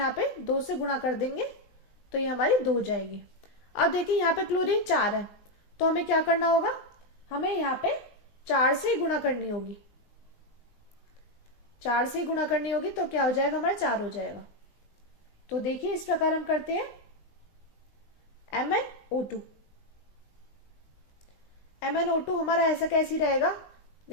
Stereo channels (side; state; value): right; late; 19 ms